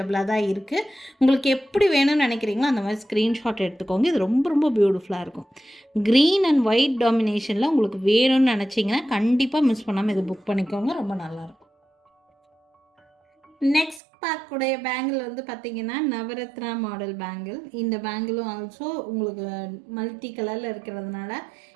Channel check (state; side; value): drops out; left; at 14.0 s